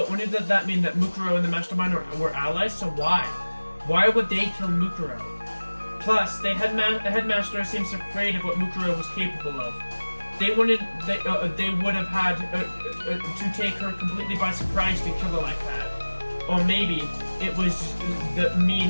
wouldn't that mean that Mukuro and the Mastermind were allies? So why? Why would they kill Mukuro? Plus, the headmaster seems afraid of what Mukuro was capable of. They would have had to take her completely by surprise to kill her like that. Or maybe it was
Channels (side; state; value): both; inverted; correlation -1.00